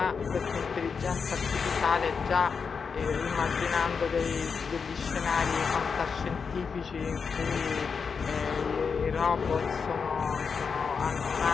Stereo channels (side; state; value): right; quieter; 5.7 dB